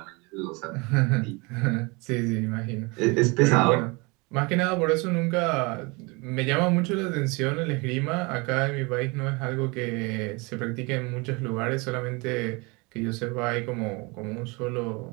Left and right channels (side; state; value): left; quieter; 27.6 dB